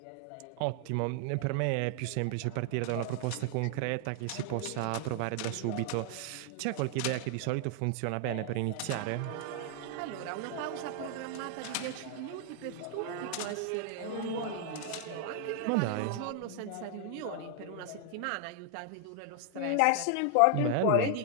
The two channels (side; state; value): both; different; correlation 0.00